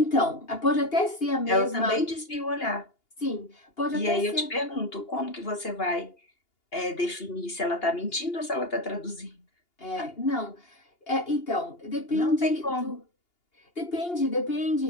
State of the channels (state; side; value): late; right; 2.8 ms